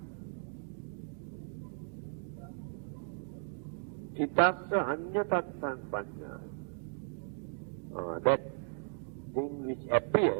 Thitassa anyatatan panyaya. That thing which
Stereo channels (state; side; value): silent; left; 54 dB below the other